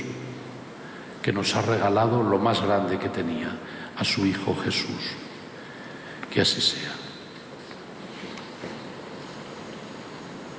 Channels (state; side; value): identical; both; correlation 1.00